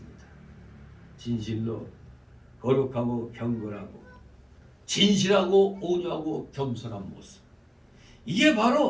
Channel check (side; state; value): both; identical; correlation 1.00